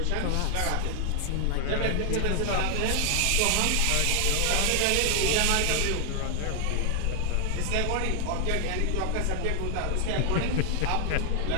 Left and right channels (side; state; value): both; different; correlation 0.00